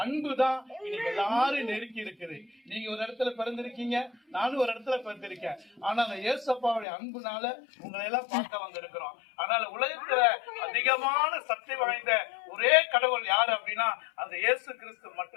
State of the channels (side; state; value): right; drops out; at 6.9 s